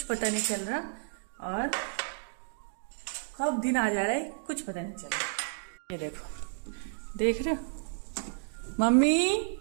पता नहीं चल रहा और कब दिन आ जा रहा है कुछ पता नहीं चल रहा। ये देखो, देख रहे हो? मम्मी,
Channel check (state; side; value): silent; left; digital silence